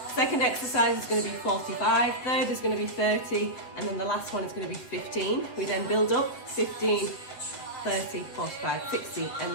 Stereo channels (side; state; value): right; late; 8.0 ms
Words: Second exercise is going to be 45, third is going to be 30, and then the last one is going to be 15. We then build up 15, 30, 45, 60, and